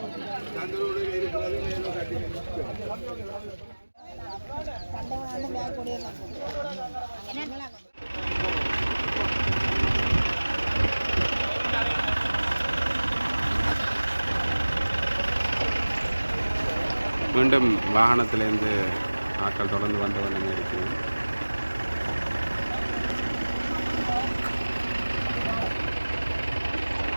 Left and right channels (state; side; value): inverted; both; correlation -1.00